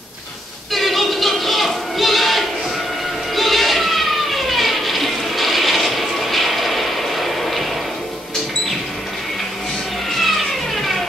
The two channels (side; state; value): both; normal; correlation 0.76